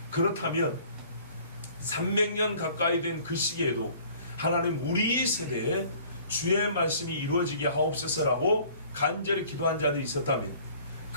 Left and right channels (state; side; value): inverted; both; correlation -0.53